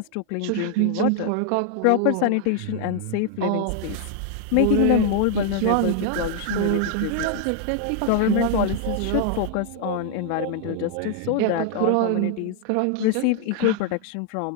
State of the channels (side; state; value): both; different; correlation 0.00